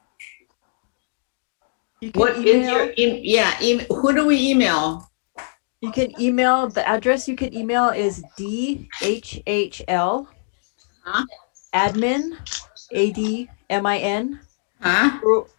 You can What is email. your who do we email? You can email, the address you can email is DHHL Huh? admin, ADMIN, Huh?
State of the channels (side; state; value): right; silent; digital silence